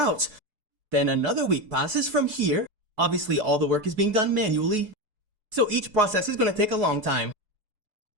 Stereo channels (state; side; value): late; left; 4.7 ms